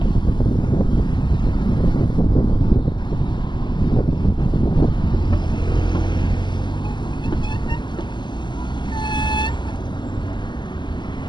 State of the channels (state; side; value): late; right; 0.21 ms